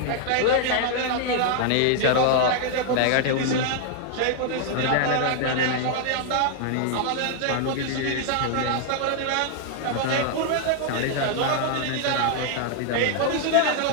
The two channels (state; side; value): different; both; correlation 0.00